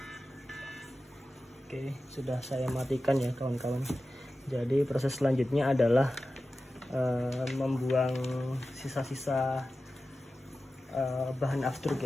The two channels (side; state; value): both; normal; correlation 0.94